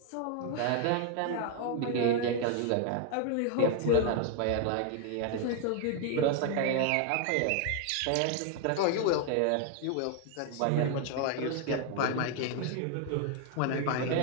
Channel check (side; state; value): both; different; correlation 0.01